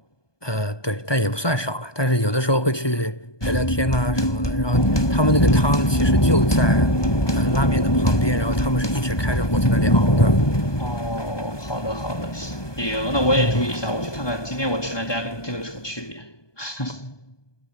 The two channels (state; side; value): late; right; 1.2 ms